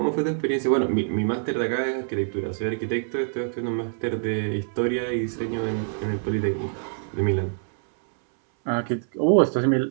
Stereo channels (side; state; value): left; silent; 62 dB below the other